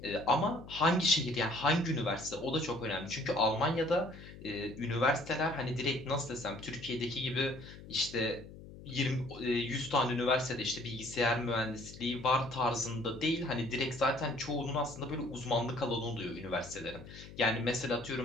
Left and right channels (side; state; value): left; noise; hum, 16 dB below the sound